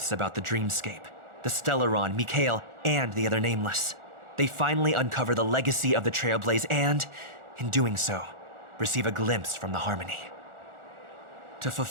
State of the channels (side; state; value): left; late; 1.4 ms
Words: about the dreamscape, the Stellaron, Mikhail, and the other nameless. They finally uncover the legacy of the Trailblaze and, in doing so, receive a glimpse from the Harmony. To